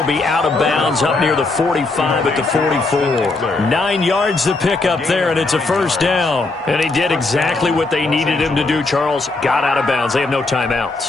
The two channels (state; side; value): quieter; right; 3.4 dB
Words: be out of bounds up near the 45 at the 44. 9 yards to pick up there, and it's a first down. And he did exactly what they needed him to do, Charles. Got out of bounds. They have no